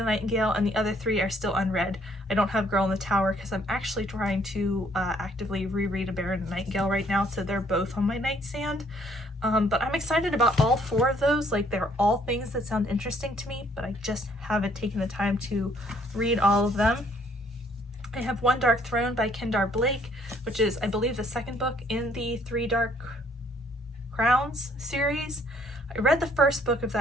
Nightingale, and the other 3 are still unread. I don't have Girl in the Tower because I'm actually trying to actively reread A Bear and the Nightingale right now, so they're both on my nightstand. But I'm excited about all 4 of those. Like, they're all things that sound interesting to me, but I just haven't taken the time to read all of them. I have One Dark Throne by Kendar Blake, which is, I believe, the second book in the 3 Dark Crowns series. I read the first book of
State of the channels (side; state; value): both; normal; correlation 0.63